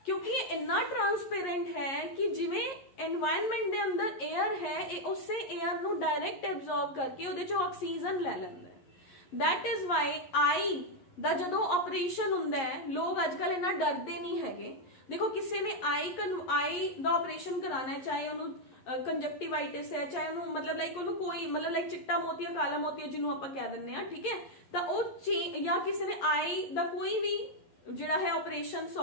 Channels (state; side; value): late; right; 11 ms